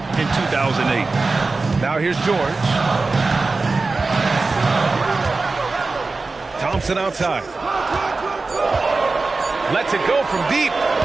in 2008. Now here's George. Thompson outside. Lets it go from deep.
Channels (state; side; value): quieter; left; 3.7 dB